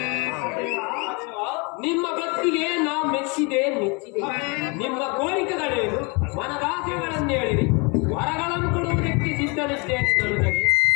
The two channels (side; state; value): right; quieter; 30.7 dB